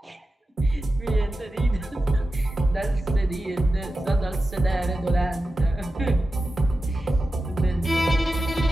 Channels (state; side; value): normal; both; correlation 0.93